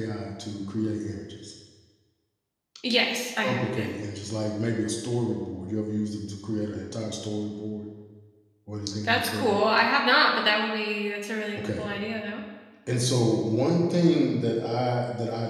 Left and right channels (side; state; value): both; identical; correlation 1.00